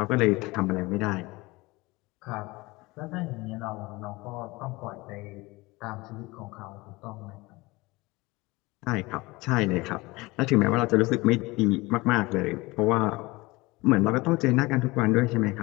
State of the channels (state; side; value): quieter; right; 22.3 dB